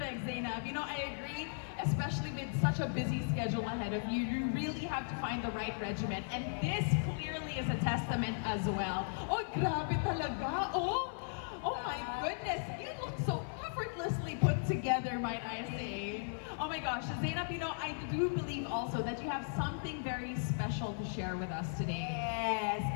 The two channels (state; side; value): silent; right; 53 dB below the other